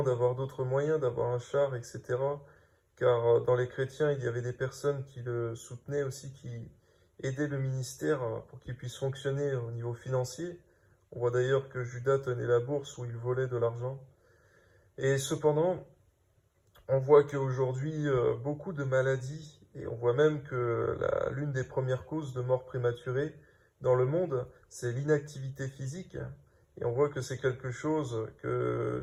d'avoir d'autres moyens, d'avoir un char, etc. Car dans les chrétiens, il y avait des personnes qui le soutenaient aussi, qui aidaient le ministère pour qu'il puisse fonctionner au niveau financier. On voit d'ailleurs que Judas tenait la bourse où il volait de l'argent. Et cependant, on voit qu'aujourd'hui, beaucoup de maladies, et on voit même que l'une des premières causes de mort prématurée dans le monde, c'est l'inactivité physique. Et on voit que c'est quelque chose que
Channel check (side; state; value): both; identical; correlation 1.00